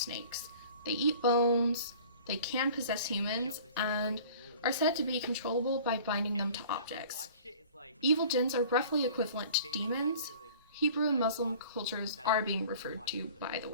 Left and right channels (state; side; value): inverted; both; correlation -0.46